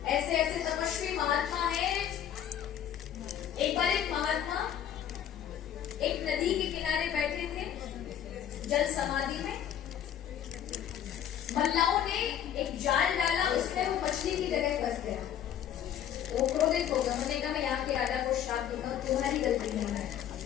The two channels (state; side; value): quieter; right; 9.9 dB